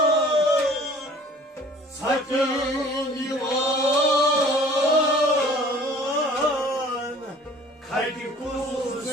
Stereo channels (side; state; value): both; normal; correlation 0.50